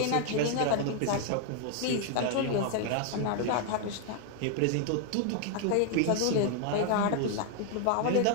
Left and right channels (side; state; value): both; different; correlation 0.00